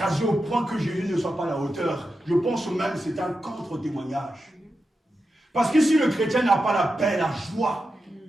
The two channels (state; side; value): normal; both; correlation 0.89